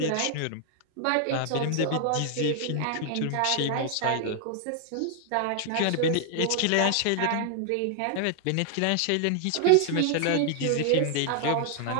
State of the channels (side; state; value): both; different; correlation 0.00